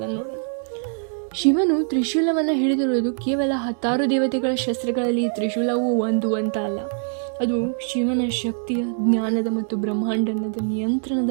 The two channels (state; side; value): silent; left; digital silence